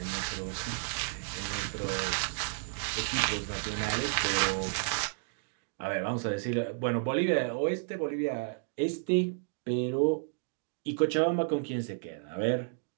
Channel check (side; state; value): left; silent; digital silence